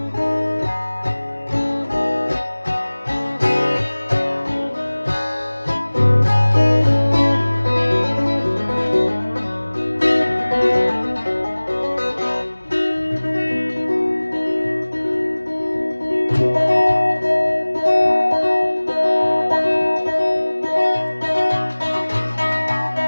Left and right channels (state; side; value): inverted; both; correlation -1.00